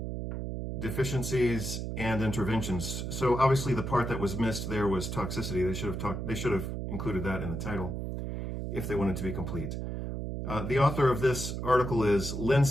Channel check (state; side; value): noise; right; hum, 4 dB below the sound